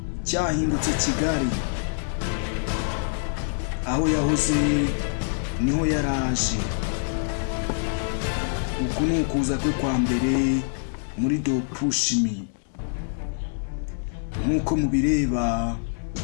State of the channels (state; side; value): silent; right; digital silence